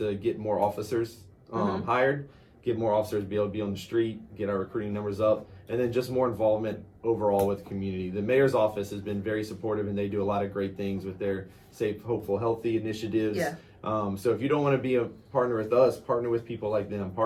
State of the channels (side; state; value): both; identical; correlation 1.00